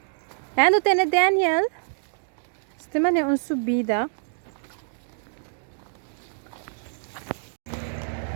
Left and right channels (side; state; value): left; silent; digital silence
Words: Ano tem Daniel? Este man é uma subida.